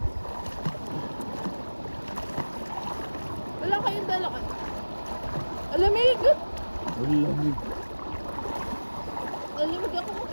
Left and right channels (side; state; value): both; inverted; correlation -1.00